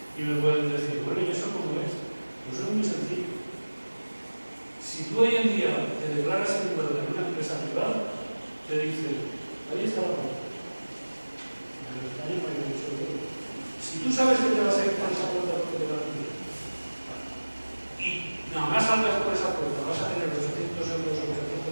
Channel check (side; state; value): both; inverted; correlation -1.00